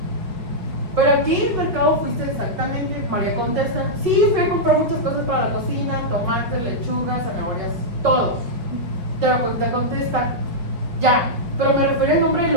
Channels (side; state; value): left; late; 5.3 ms